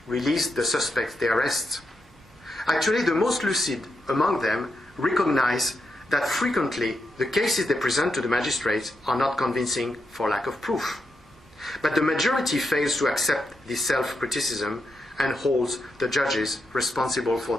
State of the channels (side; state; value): both; normal; correlation 0.84